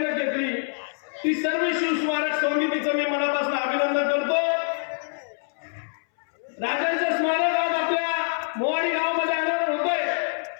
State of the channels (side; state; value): right; silent; 62 dB below the other